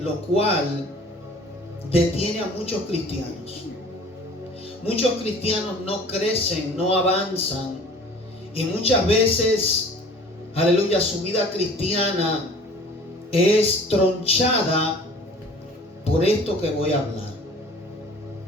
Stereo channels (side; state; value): both; normal; correlation 0.47